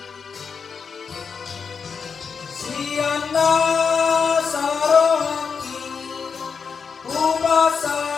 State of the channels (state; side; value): quieter; right; 5.9 dB